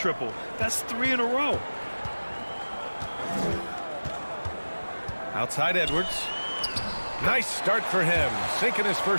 That's 3 in a row. Outside Edwards. Nice start for him. Sinking his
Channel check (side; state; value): both; inverted; correlation -1.00